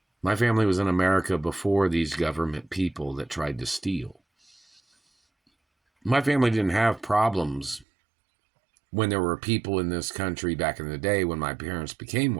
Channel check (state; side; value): drops out; left; at 7.9 s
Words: My family was in America before these government people that tried to steal. My family didn't have problems when there were people in this country back in the day when my parents became